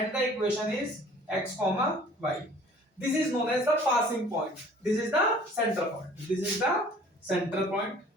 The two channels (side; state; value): both; normal; correlation 0.51